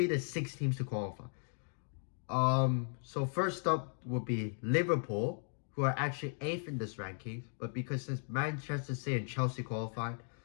the 6 teams to qualify? So first up would be Liverpool, who are actually 8th in this ranking, but because since Manchester City and Chelsea qualified,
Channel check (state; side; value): silent; right; 53 dB below the other